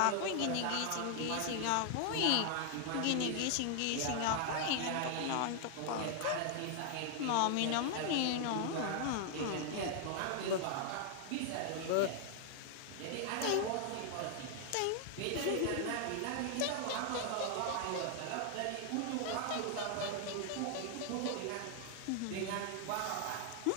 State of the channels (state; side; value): different; both; correlation 0.00